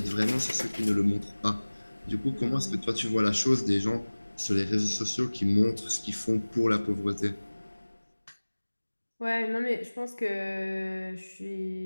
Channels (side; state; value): both; inverted; correlation -1.00